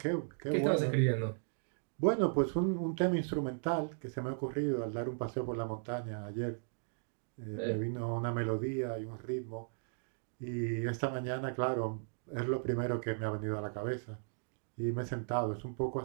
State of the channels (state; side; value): silent; left; digital silence